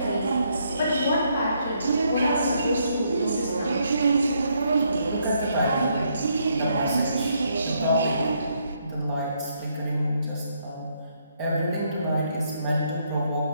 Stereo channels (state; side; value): inverted; both; correlation -0.74